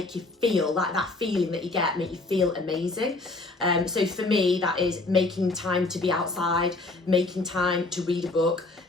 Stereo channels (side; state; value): right; quieter; 3.2 dB